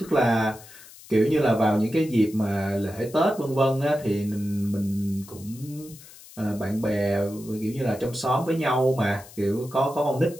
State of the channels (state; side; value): noise; left; hiss, 20 dB below the sound